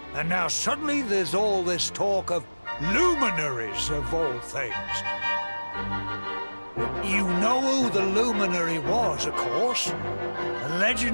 And now suddenly there's all this talk of luminaries of all things. You know who the luminary was, of course. A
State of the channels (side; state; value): both; inverted; correlation -1.00